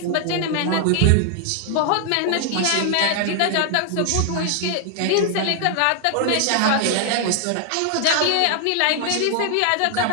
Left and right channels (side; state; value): both; different; correlation 0.00